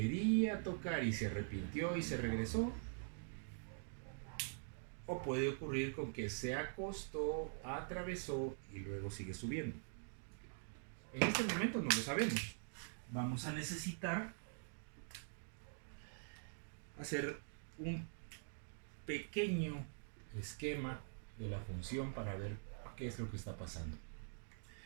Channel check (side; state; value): left; silent; digital silence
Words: tocar y se arrepintió y se regresó, o puede ocurrir con que se acostó, atravesó y luego sigue subiendo. En este momento no lo sabemos. Vamos a necesitar hacer un pequeño esquema de la función para ver qué es lo que está pasando.